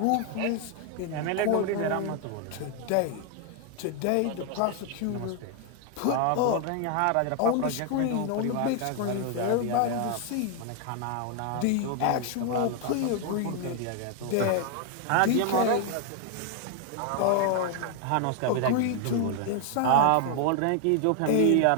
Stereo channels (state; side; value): different; both; correlation 0.00